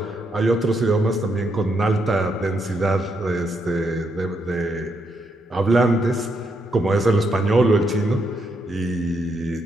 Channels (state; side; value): normal; both; correlation 0.78